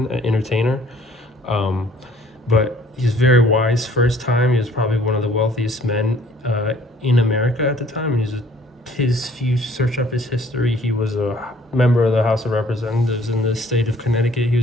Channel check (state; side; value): normal; both; correlation 0.58